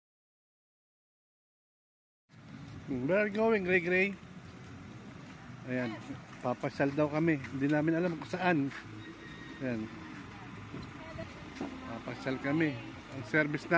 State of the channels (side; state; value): both; identical; correlation 1.00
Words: Where are you going, Gray? Ayan, papasyal daw kami. Hindi namin alam kung saan. Ayan. Papasyal kami. Ang service